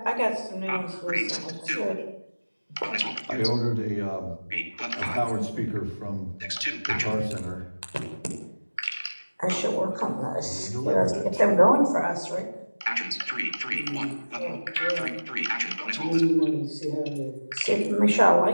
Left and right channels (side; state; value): both; inverted; correlation -1.00